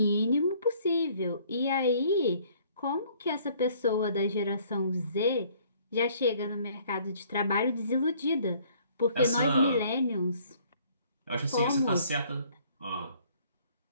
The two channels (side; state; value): both; inverted; correlation -0.59